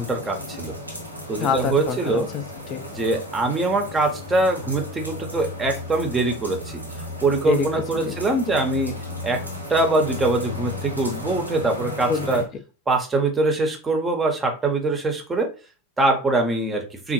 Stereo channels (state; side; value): normal; both; correlation 0.44